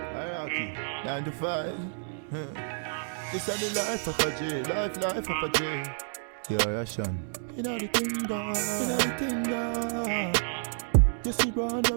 Hierarchy, 9 to 5. This is the life of a J, life of a J. Yeah, yeah, Sean. Inna the kingdom, inna the kingdom. You see run where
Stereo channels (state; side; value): silent; left; 58 dB below the other